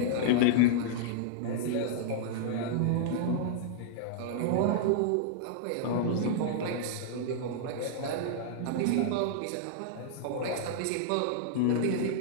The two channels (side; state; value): both; different; correlation -0.01